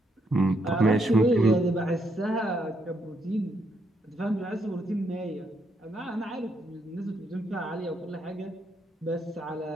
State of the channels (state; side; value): normal; both; correlation 0.76